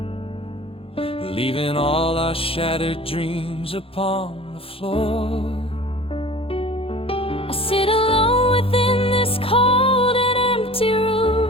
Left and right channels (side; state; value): right; late; 0.27 ms